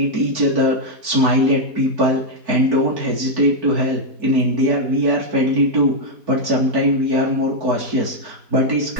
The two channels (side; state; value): left; late; 4.5 ms